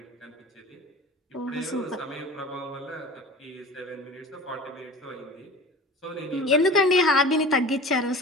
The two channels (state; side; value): normal; both; correlation 0.37